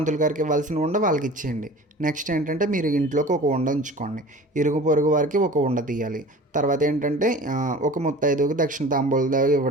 గారికి ఇవ్వాల్సిన ఉండ వాళ్ళకి ఇచ్చేయండి. నెక్స్ట్ ఏంటంటే, మీరు ఇంట్లోకి ఒక ఉండ ఉంచుకోండి, ఇరుగు పొరుగు వారికి ఒక ఉండ తీయాలి. తర్వాత ఏంటంటే, ఒక ముత్తైదువుకి దక్షిణ తాంబూలం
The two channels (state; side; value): normal; both; correlation 0.41